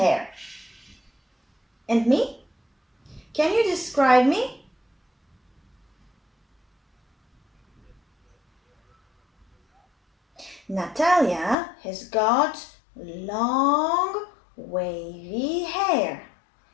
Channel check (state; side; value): drops out; right; at 11.6 s